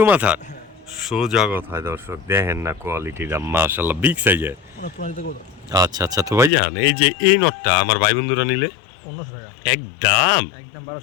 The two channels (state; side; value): drops out; right; at 6.5 s